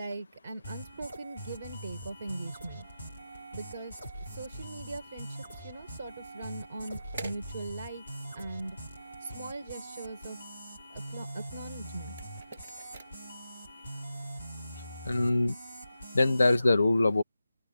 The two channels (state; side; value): inverted; both; correlation -0.92